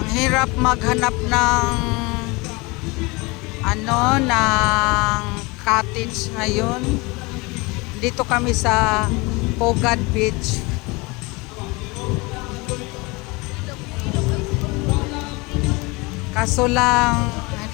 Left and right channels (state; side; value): quieter; right; 25.5 dB